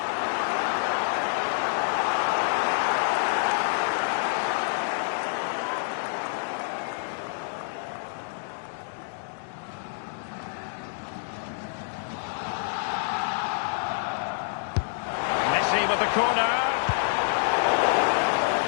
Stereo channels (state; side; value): silent; right; digital silence